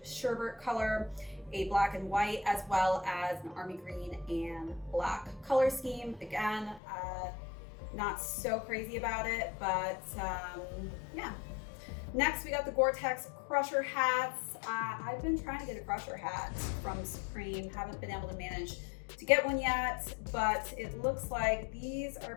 sherbet color, a black and white, as well as an army green and black color scheme. Again, not so crazy about it, but yeah. Next, we got the Gore-Tex Crusher hats. I've been trying to get a Crusher hat from Supreme, haven't been able to manage to get one yet, but it looks like these are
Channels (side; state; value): right; drops out; at 6.8 s